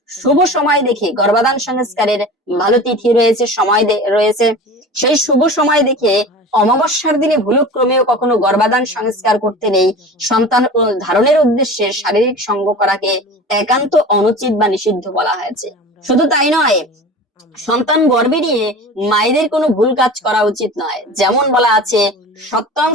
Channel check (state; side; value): normal; both; correlation 0.36